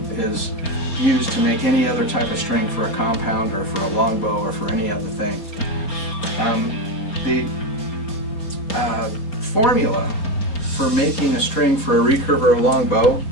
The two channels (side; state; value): right; late; 4.3 ms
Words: is used to make any other type of string for a compound or for a longbow or for any other thing. The formula for making a string for a recurve or a longbow